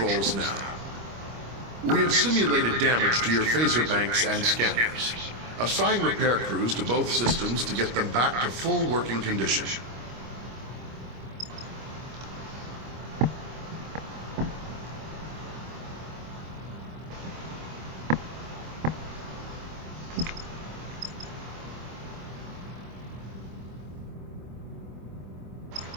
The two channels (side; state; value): left; late; 25 ms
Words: now. We have simulated damage to your phaser banks and scanners. Assign repair crews to both systems to get them back to full working condition.